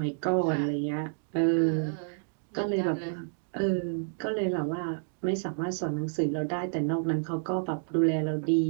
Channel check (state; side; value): silent; left; digital silence